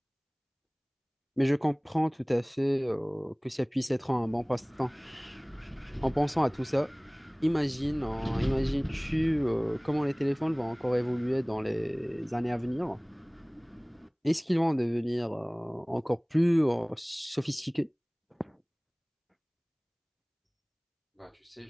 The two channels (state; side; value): identical; both; correlation 1.00